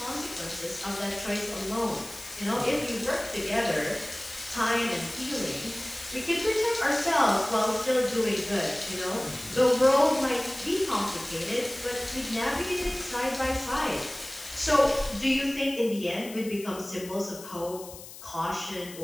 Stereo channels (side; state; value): left; noise; hiss, 15 dB below the sound